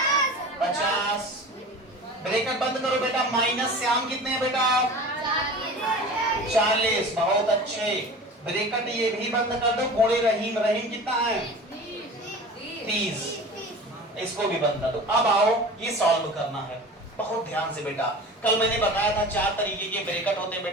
50। ब्रैकेट बंद करो बेटा। माइनस श्याम कितने हैं बेटा? 40। बहुत अच्छे। ब्रैकेट ये भी बंद कर दो। गुणे रहीम कितना है? 30। इसको भी बंद कर दो। अब आओ ये सॉल्व करना है। बहुत ध्यान से बेटा, कल मैंने बताया था 4 तरीके के ब्रैकेट होते हैं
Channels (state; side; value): normal; both; correlation 0.37